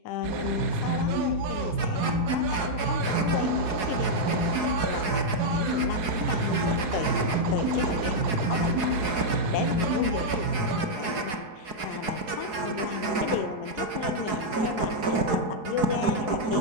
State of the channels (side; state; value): left; late; 4.7 ms